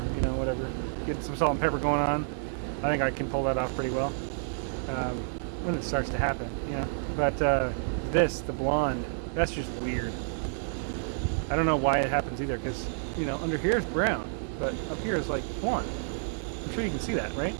you know, whatever. Get some salt and pepper going on. I think I can pull that off pretty well when it starts to happen, you know. But the blonde, that's just weird. I don't know why it happens either, because, you know, under here is brown, but up here is like blonde. I'm sure you can see that, right?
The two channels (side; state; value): left; silent; 58 dB below the other